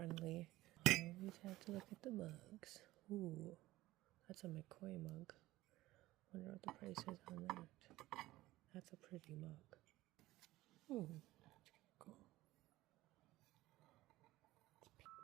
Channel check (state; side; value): quieter; left; 17.4 dB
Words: I always have to look at the mugs. Ooh, that's a McCoy mug. Wonder what the price is on that. That's a pretty mug. Ooh, that's cool.